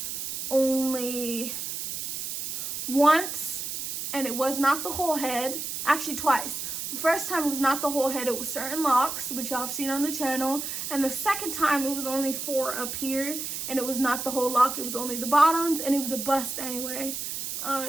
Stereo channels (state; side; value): noise; right; hiss, 5 dB below the sound